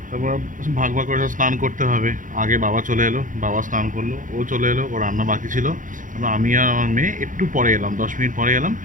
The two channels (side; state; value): left; late; 0.38 ms